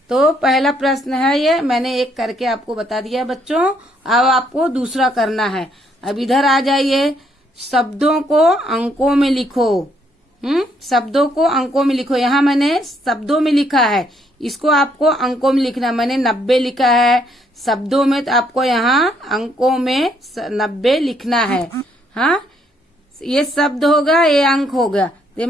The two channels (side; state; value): both; normal; correlation 0.70